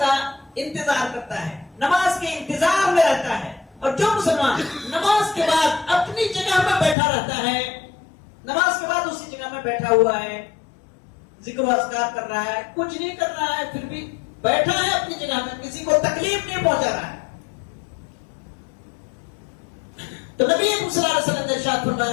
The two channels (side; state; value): right; drops out; at 7.0 s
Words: انتظار کرتا ہے، نماز کے انتظار میں رہتا ہے، اور جو مسلمان نماز کے بعد اپنی جگہ میں بیٹھا رہتا ہے، نماز کے بعد اسی جگہ میں بیٹھا ہوا ہے، ذکر و اذکار کر رہا ہے، کچھ نہیں کر رہا ہے، پھر بھی بیٹھا ہے اپنی جگہ میں، کسی کو تکلیف نہیں پہنچا رہا ہے، تو نبی صلی اللہ علیہ وسلم نے ارشاد